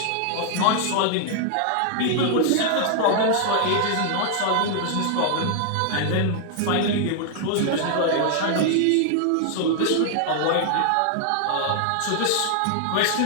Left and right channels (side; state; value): both; different; correlation 0.00